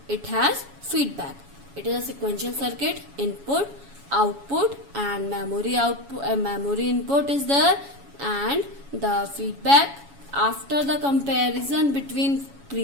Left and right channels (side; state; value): left; late; 7.2 ms